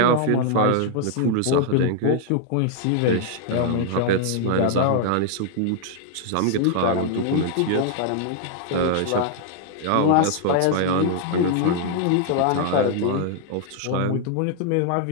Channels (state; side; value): different; both; correlation -0.01